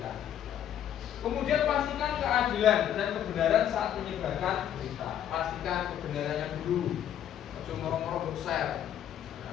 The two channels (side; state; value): right; quieter; 10.3 dB